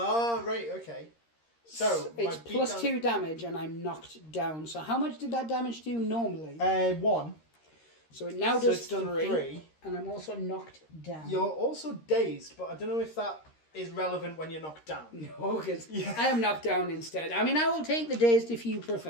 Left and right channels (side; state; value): right; late; 13 ms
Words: right, okay. So, it's plus 2 damage and I'm knocked down. So how much did that damage do normally? 1. So it now does it's done 3. And I'm also knocked down. You're also dazed, but I don't know if that is relevant when you're knocked down. No, because I am knocked down instead. I mean, I will take the dazed if you